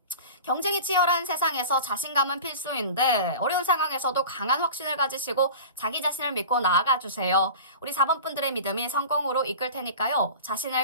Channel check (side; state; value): both; inverted; correlation -0.35